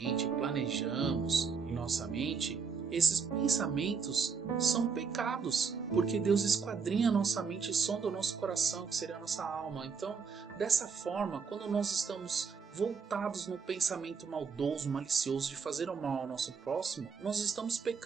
planejamos em nossa mente, esses pensamentos são pecados, porque Deus esquadrinha a nossa mente e sonda o nosso coração, que seria a nossa alma. Então, dessa forma, quando nós estamos voltados no pensamento maldoso, malicioso de fazer o mal ao nosso próximo, nós estamos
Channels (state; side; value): quieter; left; 5.8 dB